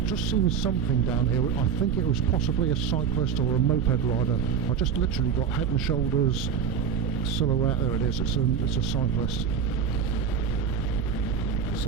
just seen something down here. I think it was possibly a cyclist or a moped rider. I just literally got head and shoulders silhouette. There it is. It's a cyclist.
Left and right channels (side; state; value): left; quieter; 7.5 dB